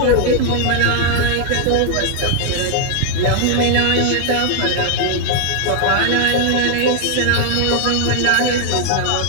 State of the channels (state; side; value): different; both; correlation 0.00